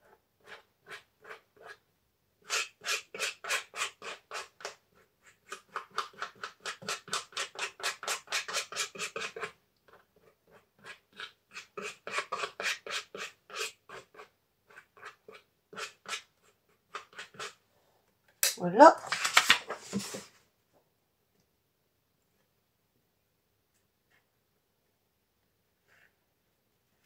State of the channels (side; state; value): both; identical; correlation 1.00